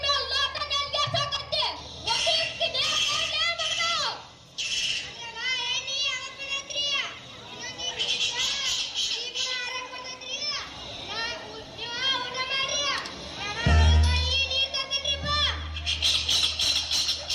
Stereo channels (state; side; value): identical; both; correlation 1.00